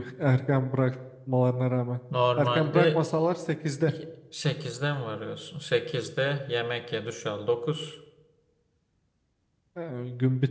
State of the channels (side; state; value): both; identical; correlation 1.00